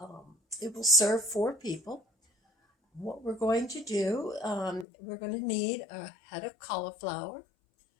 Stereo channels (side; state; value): right; drops out; at 4.9 s